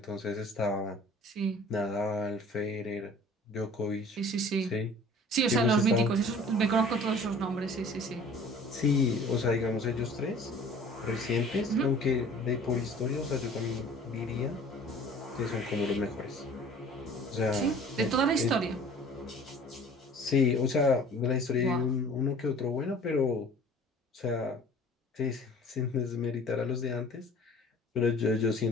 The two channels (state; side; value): normal; both; correlation 0.48